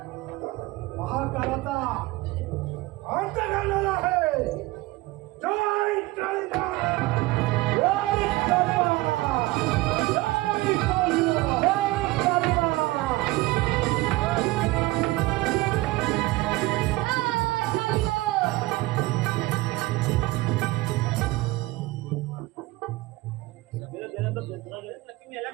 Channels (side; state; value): left; quieter; 20.1 dB